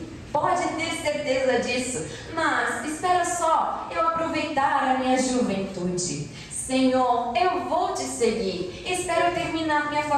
Pode ter certeza disso, mas espera só eu aproveitar a minha juventude. Senhor, eu vou te seguir. Espero terminar minha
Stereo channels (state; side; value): identical; both; correlation 1.00